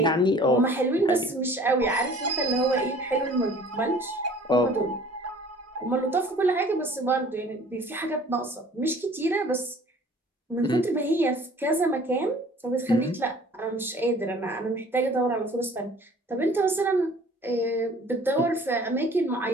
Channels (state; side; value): normal; both; correlation 0.50